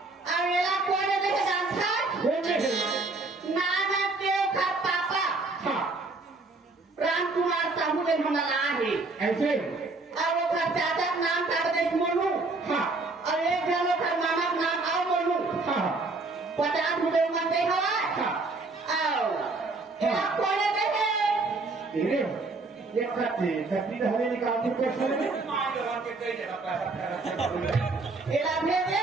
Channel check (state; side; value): quieter; left; 3.5 dB